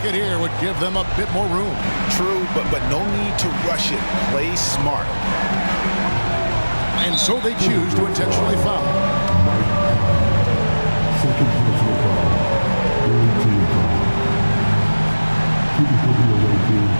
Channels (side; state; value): both; inverted; correlation -1.00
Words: here would give them a bit more room. True, but no need to rush it. Play smart. And so they choose to intentionally foul. Second personal foul. Team foul. Keeping for the away team.